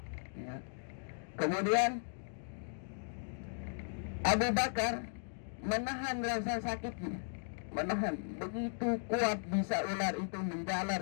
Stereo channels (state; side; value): silent; right; digital silence